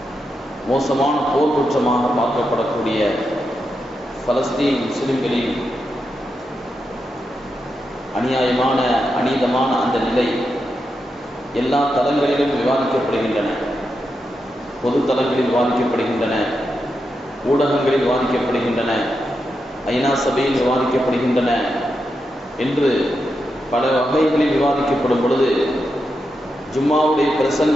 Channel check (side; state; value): both; normal; correlation 0.86